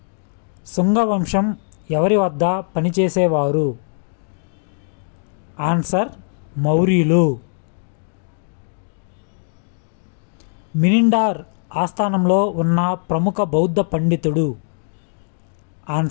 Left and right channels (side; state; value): right; silent; digital silence